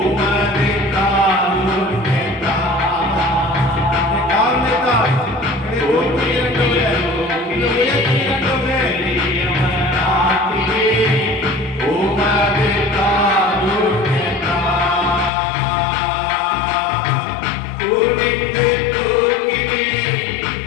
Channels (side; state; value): right; drops out; at 15.3 s